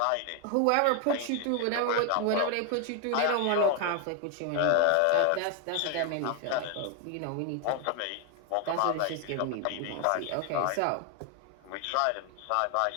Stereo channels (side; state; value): both; different; correlation 0.01